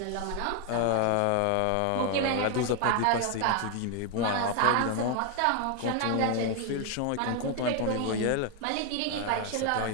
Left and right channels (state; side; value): different; both; correlation 0.01